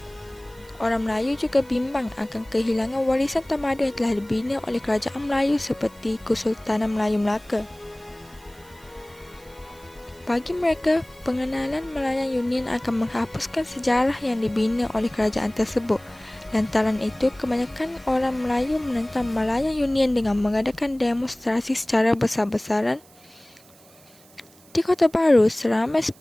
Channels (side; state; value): right; noise; hiss, 26 dB below the sound